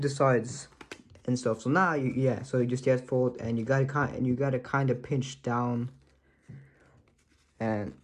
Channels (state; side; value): identical; both; correlation 1.00